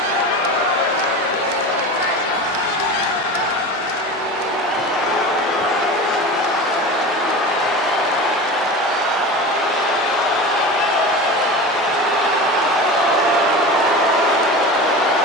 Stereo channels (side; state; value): both; normal; correlation 0.31